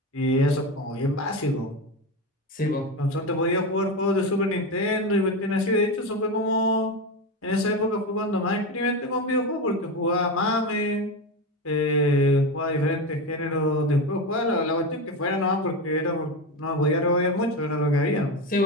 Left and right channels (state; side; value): normal; both; correlation 0.18